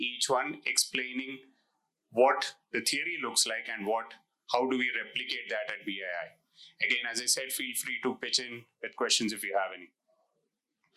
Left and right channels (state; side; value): identical; both; correlation 1.00